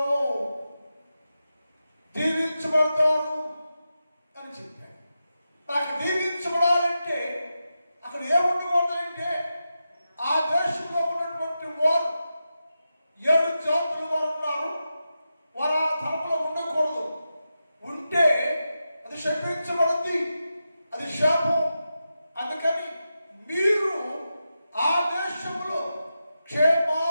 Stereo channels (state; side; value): inverted; both; correlation -0.90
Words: దీవించబడతారు అని చెప్పాడు. నాకు దీవించబడాలంటే అక్కడ ఏముండకూడదంటే, ఆ దేశంలో ఉన్నటువంటి వారు 7 జాతుల వారు ఉన్నారు. వారు ఆ ధర్మంలో ఉండకూడదు. ఉంటే అది శపించబడింది, అది శాపం. అందుకని మీరు ఆ దేశంలో